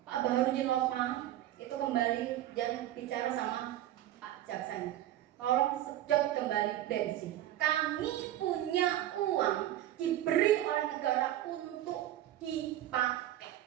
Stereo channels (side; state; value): left; quieter; 13.3 dB